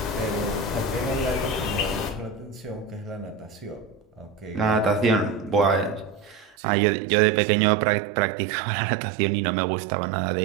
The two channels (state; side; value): drops out; left; at 6.6 s